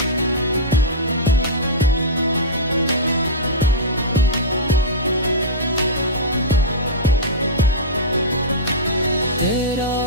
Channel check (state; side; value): normal; both; correlation -0.15